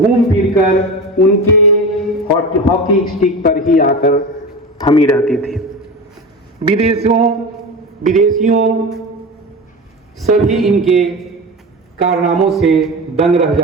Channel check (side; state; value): both; normal; correlation 0.27